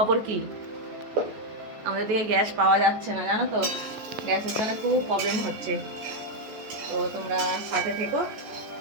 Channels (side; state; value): left; late; 14 ms